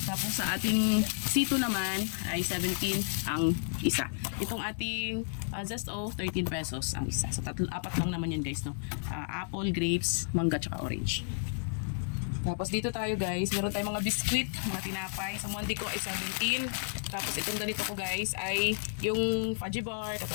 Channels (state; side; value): silent; right; digital silence